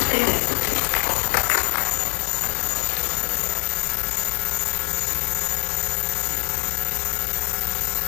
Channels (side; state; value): right; silent; digital silence